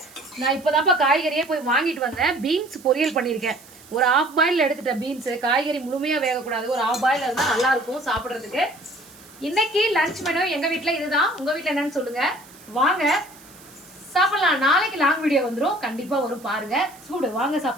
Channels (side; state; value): right; noise; hiss, 23 dB below the sound